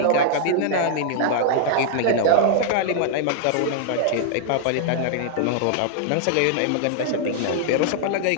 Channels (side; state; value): both; different; correlation -0.01